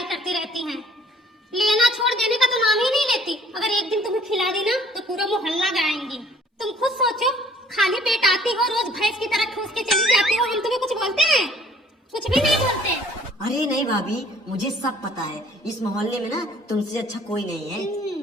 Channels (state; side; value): normal; both; correlation 0.56